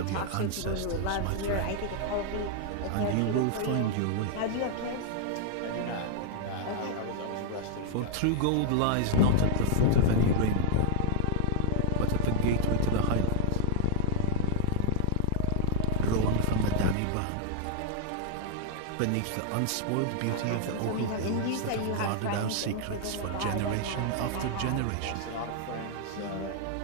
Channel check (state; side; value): different; both; correlation 0.00